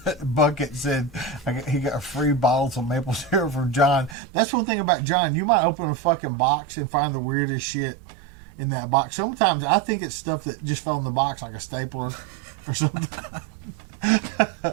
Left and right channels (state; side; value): drops out; left; at 4.2 s